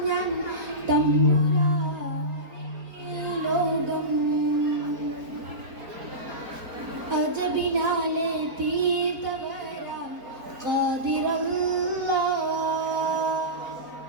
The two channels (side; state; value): left; late; 4.3 ms